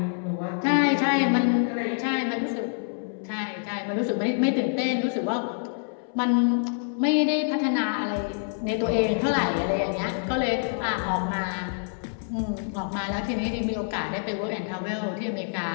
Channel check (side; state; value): right; silent; 61 dB below the other